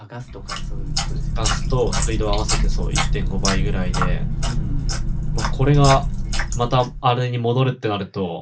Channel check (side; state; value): both; identical; correlation 1.00